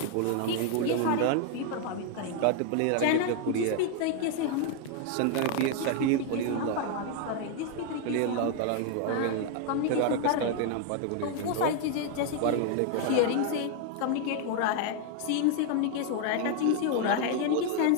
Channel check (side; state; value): both; different; correlation 0.00